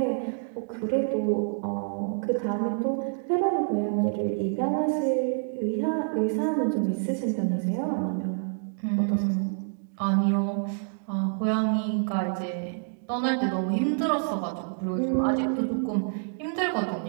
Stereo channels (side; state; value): left; silent; digital silence